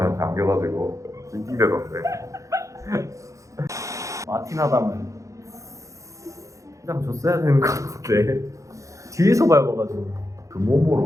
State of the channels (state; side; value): late; left; 0.15 ms